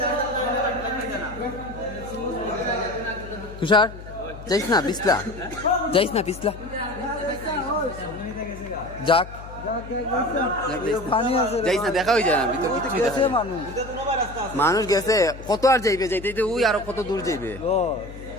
তুষার যাইস না পিছলা, যাইস না পিছলা, যাক যাইস না, দেখা হয়ে যায় না ভিতর কিছুই দেখা যায় না। মানুষ গেছে কত আর যাইবে, যাইতে ওই আরো কত দূর যাইবে,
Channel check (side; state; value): left; noise; hum, 14 dB below the sound